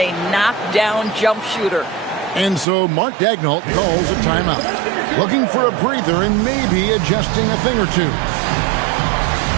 knockdown jump shooter? And so Mark Daigneault calls a timeout. Looking for a breather and maybe adjusting a thing or two.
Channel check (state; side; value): drops out; left; at 2.7 s